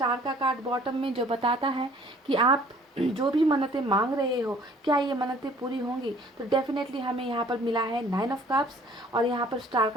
का कार्ड बॉटम में, जो बताता है कि आप जो भी मन्नतें मांग रहे हो, क्या ये मन्नतें पूरी होंगी। तो डेफिनेटली हमें यहाँ पर मिला है 9 ऑफ कप्स और यहाँ पर स्टार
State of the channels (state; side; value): normal; both; correlation 0.55